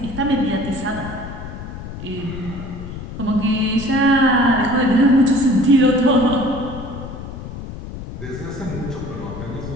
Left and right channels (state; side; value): noise; left; rumble, 10 dB below the sound